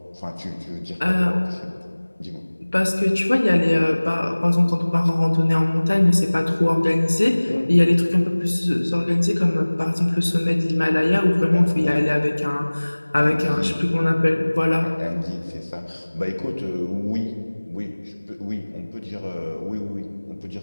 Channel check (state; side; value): inverted; both; correlation -1.00